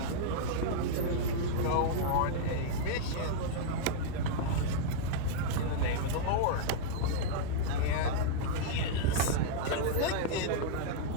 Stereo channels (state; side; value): different; both; correlation -0.02